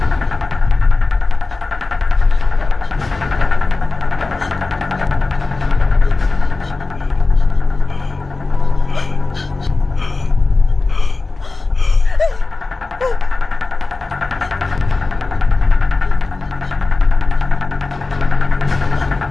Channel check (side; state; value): right; quieter; 3.5 dB